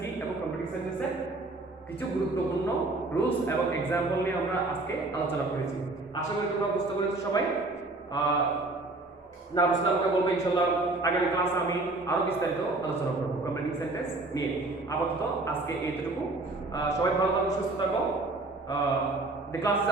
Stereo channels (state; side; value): quieter; left; 3.1 dB